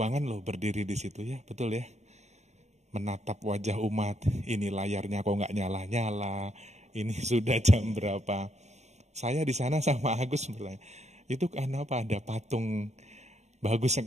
loh berdiri di situ ya, betul ya. Menatap wajah umat, ini layarnya kok nggak nyala-nyala, ini sudah jam berapa. Saya di sana sama Agus bertanya, itu kenapa ada patung bagus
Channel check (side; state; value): left; late; 0.33 ms